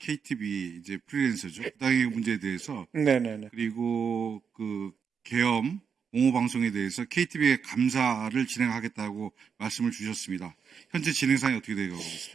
이제 프리랜서죠. 부당행위 문제에 대해서 네네네. 그리고 그 계엄 옹호 방송에 대해서 KTV의 감사를 진행하겠다고 말씀을 주셨습니다. 현재 진행상이 어떻게 되고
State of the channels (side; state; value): left; quieter; 6.6 dB